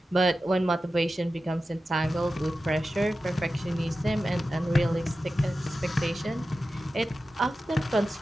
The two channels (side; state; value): both; normal; correlation 0.93